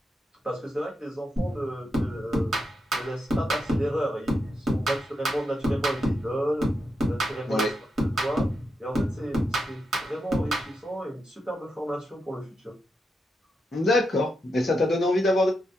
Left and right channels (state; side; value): normal; both; correlation 0.85